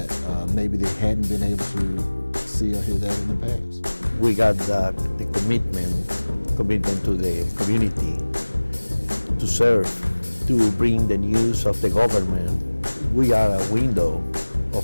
maybe they hadn't been able to see or hear that in the past. We got the commitment to the community, to serve, to bring the news of the government. We are a window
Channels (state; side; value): inverted; both; correlation -1.00